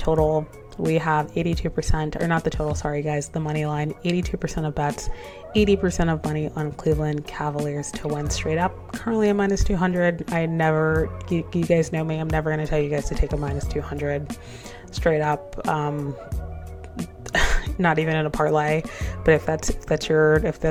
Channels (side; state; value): both; identical; correlation 1.00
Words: we have 82%, or not the total, sorry guys, the money line, 82% of bets, 80% of money on Cleveland Cavaliers to win straight up. Currently a -200. You guys know me, I'm never going to tell you guys to take a -200 straight up. Not even in a parlay, but if that's your